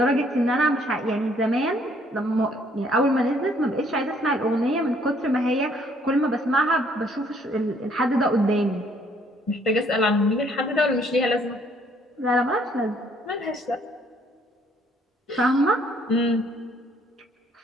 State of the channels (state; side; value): normal; both; correlation 0.64